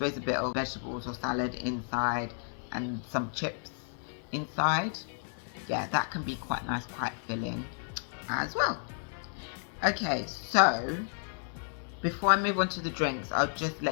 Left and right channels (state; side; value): silent; right; 56 dB below the other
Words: a bit of vegetables or salad inside and some chips inside. Yeah, that can be quite nice, quite filling as well. Okay, so before I move on to the drinks, I'll just